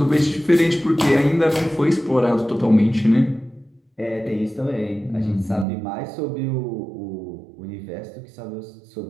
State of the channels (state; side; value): drops out; left; at 5.7 s